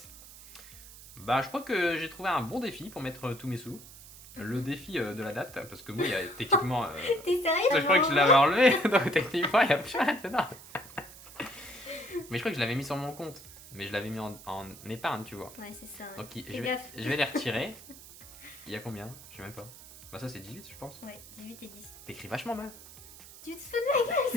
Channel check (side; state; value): right; noise; hiss, 18 dB below the sound